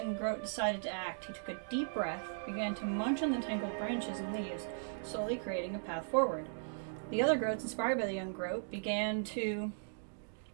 groat decided to act. He took a deep breath, began to munch on the tangled branches and leaves, slowly creating a path forward. The other groats, inspired by the young groat, began to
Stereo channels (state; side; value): silent; left; digital silence